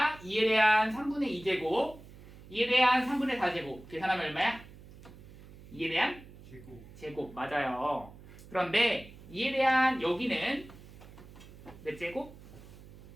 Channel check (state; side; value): noise; right; hum, 19 dB below the sound